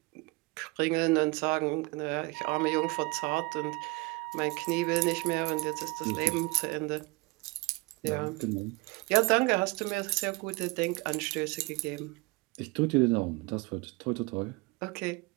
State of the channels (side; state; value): left; quieter; 24.3 dB